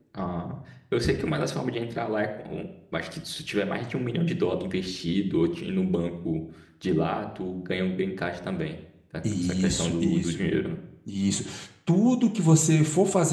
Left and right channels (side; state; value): both; identical; correlation 1.00